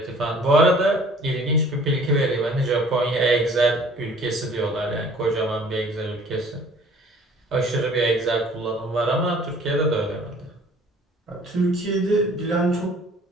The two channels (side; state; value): both; normal; correlation 0.53